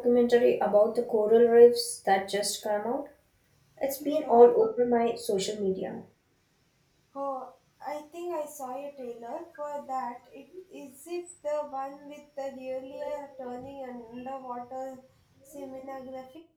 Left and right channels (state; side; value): identical; both; correlation 1.00